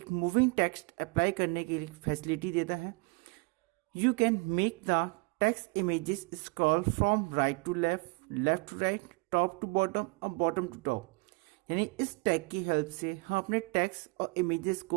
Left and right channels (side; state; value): left; quieter; 27.7 dB